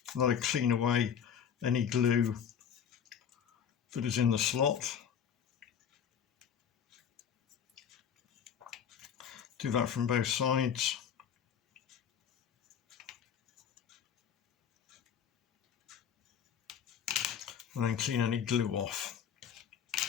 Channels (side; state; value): right; quieter; 8.1 dB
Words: let it clean away any glue that is in the slot. Do that from both sides. And then clean any glue off.